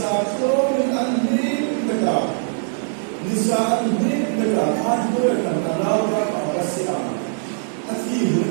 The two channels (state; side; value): silent; left; digital silence